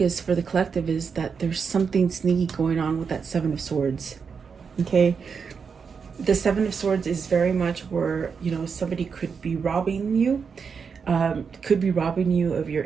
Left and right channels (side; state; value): left; quieter; 5.9 dB